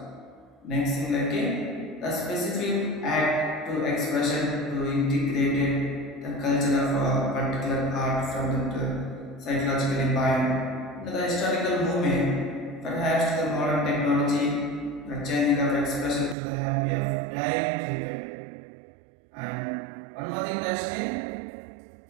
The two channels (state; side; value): drops out; left; at 16.4 s